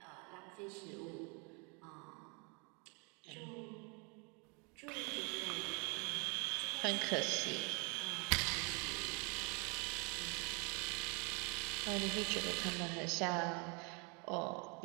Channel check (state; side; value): quieter; left; 32.8 dB